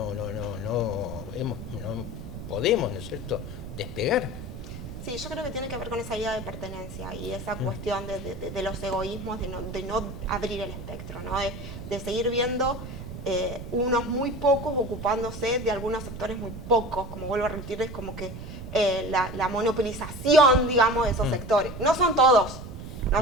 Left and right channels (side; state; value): right; noise; rumble, 10 dB below the sound